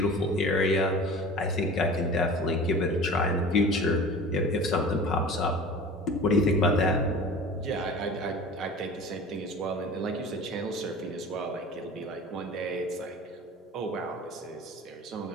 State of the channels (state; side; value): normal; both; correlation 0.39